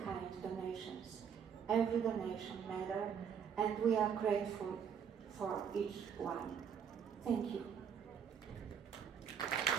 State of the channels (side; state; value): left; quieter; 7.6 dB